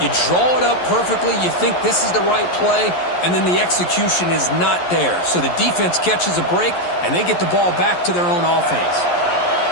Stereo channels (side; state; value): right; late; 11 ms